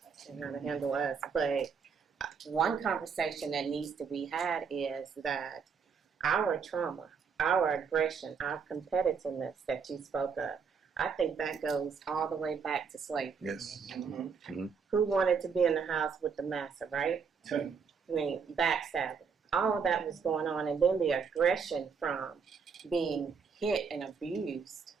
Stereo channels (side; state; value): left; quieter; 6.0 dB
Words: And how to handle us. But one conversation that needs to be had is that our trauma, our aggression, our competitiveness that you spoke of, I think that goes all the way back to slavery. Yes. Who wanted to be in the house with the massa, right? I mean, backstabbing. All of that was going on. And then the aggression from being hit and abused